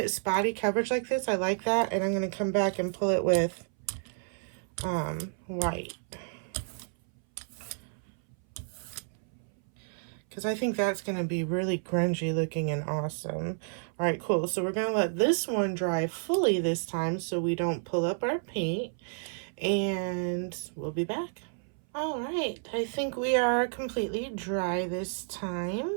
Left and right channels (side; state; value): left; silent; 57 dB below the other